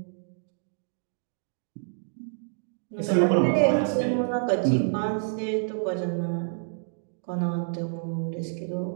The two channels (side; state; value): left; silent; digital silence